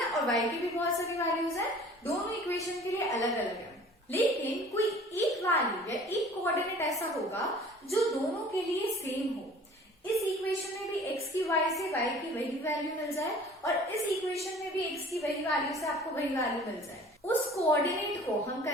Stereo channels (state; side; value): normal; both; correlation 0.48